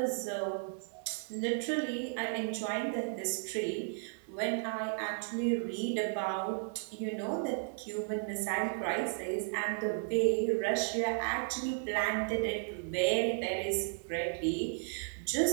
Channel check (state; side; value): silent; left; 55 dB below the other